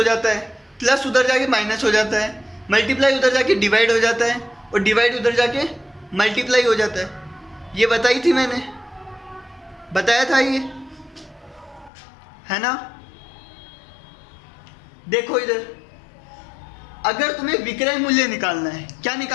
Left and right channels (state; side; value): drops out; right; at 11.9 s